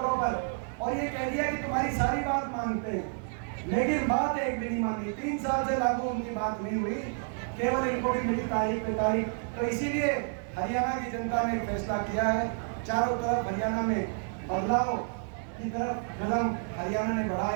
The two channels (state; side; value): silent; left; 58 dB below the other